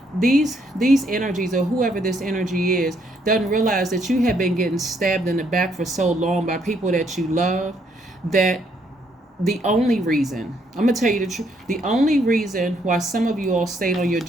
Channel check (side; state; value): both; normal; correlation 0.71